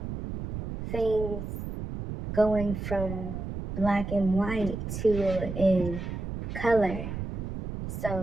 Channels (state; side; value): noise; right; rumble, 6 dB below the sound